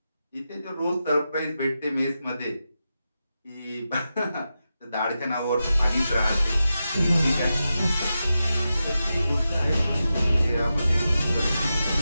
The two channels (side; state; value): both; inverted; correlation -0.90